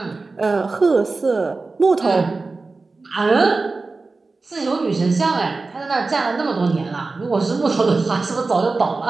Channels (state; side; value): quieter; left; 3.8 dB